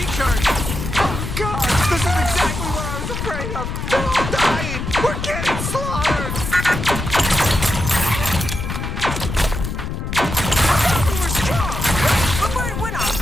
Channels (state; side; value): noise; left; rumble, 5 dB below the sound